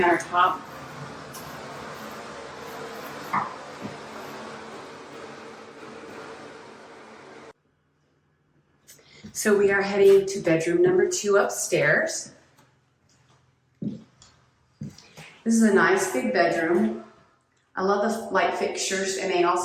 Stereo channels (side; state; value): both; identical; correlation 1.00